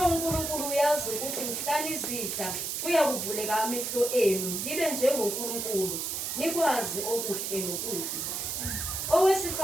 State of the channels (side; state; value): right; noise; hiss, 3 dB below the sound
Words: uNkulunkulu uyazi ukuthi mhla nizidla kuyakuvuleka amehlo enu libe njengoNkulunkulu, nikwazi okuhle nokubi.